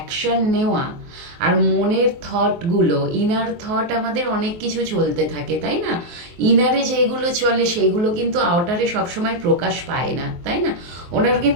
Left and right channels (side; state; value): left; late; 23 ms